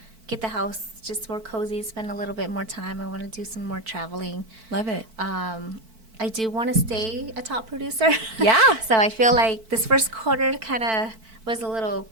get the house just more cozy, spend a little bit more time. I want to do some more traveling. Love it. I do want to stay a top producer. Yeah. So I feel like this first quarter kind of was a little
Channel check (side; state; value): left; late; 4.5 ms